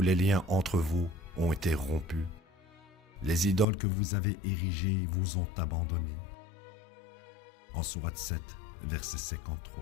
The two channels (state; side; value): drops out; right; at 3.7 s